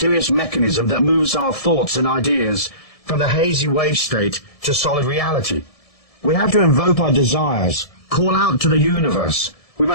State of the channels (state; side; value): late; right; 1.7 ms